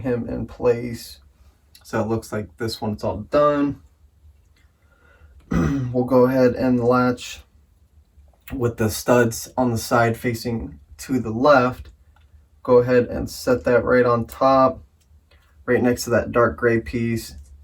him in place. So it looks like this one's all done. We'll go ahead and latch with the studs on the side facing to the left. Go ahead and set that right on top, right next to that dark gray piece.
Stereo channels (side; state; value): both; identical; correlation 1.00